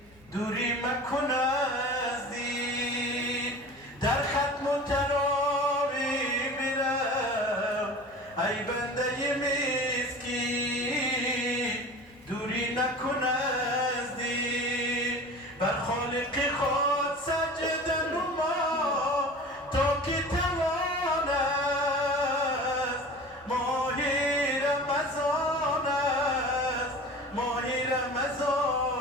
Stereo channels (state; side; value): normal; both; correlation 0.38